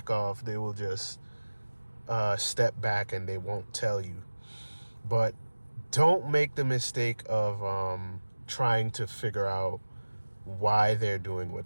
off. They will just step back and they won't tell you. But don't make the mistake of trying to figure out why they're doing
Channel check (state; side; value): inverted; both; correlation -1.00